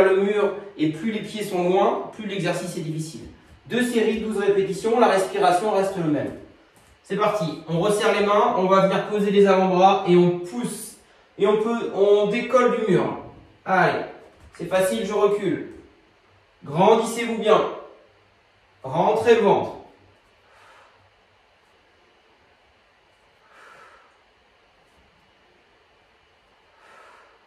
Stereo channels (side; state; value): both; identical; correlation 1.00